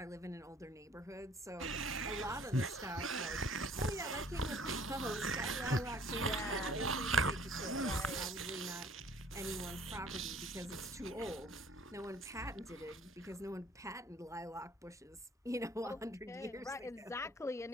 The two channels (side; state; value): both; normal; correlation 0.56